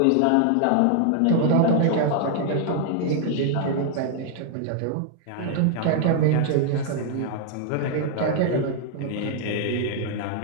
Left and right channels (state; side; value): different; both; correlation 0.00